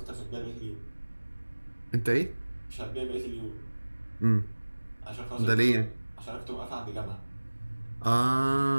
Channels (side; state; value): both; inverted; correlation -1.00